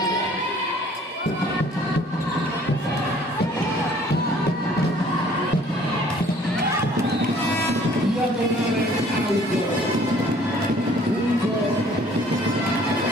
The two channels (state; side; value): normal; both; correlation 0.56